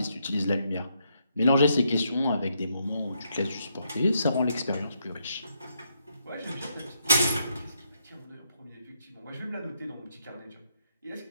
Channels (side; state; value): both; inverted; correlation -0.78